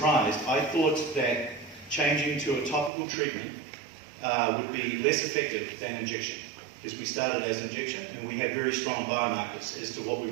I thought that changing to a topical treatment would be less effective than injection, because we started as injection and we had very strong biomarkers as to what we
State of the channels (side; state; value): left; drops out; at 2.9 s